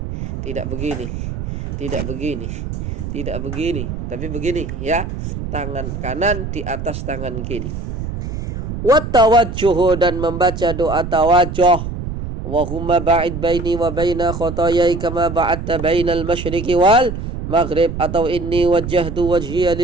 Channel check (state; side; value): noise; right; rumble, 6 dB below the sound